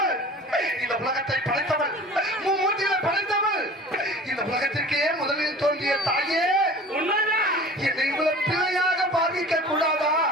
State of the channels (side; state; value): both; normal; correlation 0.41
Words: இந்த உலகத்தை படைத்தவள், மும்மூர்த்திகளை படைத்தவள், இந்த உலகத்திற்கே முதலில் தோன்றிய தாயே, உண்மைதான். என்னை இவ்வளவு பிள்ளையாக பாவிக்க கூடாதா?